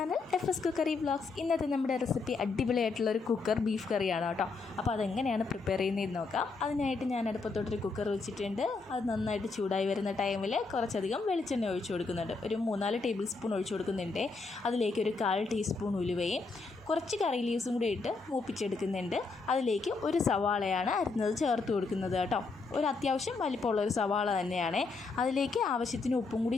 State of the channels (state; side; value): quieter; right; 4.1 dB